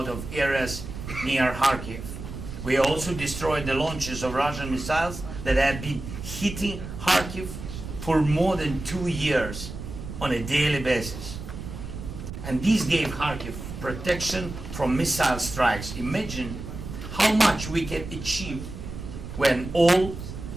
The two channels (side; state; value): right; noise; rumble, 9 dB below the sound